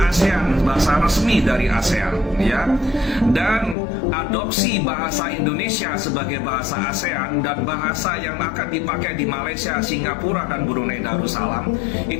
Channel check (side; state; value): right; drops out; at 3.8 s